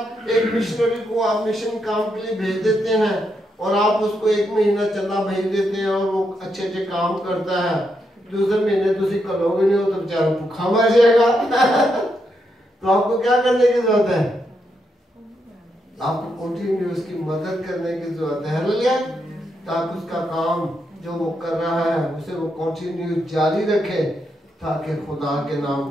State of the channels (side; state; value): both; normal; correlation 0.81